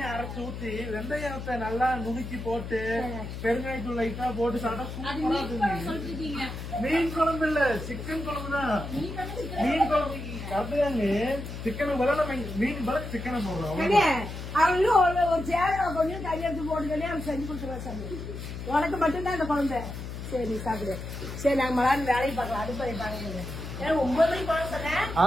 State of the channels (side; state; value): left; noise; hum, 8 dB below the sound